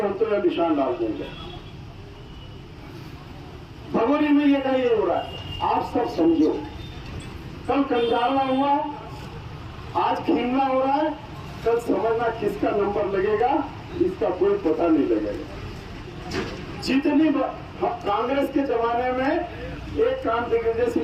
हम तो यह निशान डाल देंगे। भगोरी में ये कहीं हो रहा है, आप सब समझो। कल कंजाला हुआ, आज खीमला हो रहा है, कल समझना किसका नंबर लगेगा इसका कोई पता नहीं लगेगा। जितनी कांग्रेस के जमाने में एक काम दिग्विजय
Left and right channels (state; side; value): identical; both; correlation 1.00